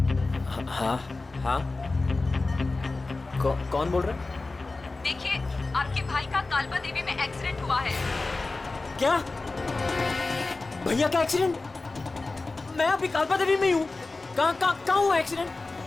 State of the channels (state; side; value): quieter; right; 3.4 dB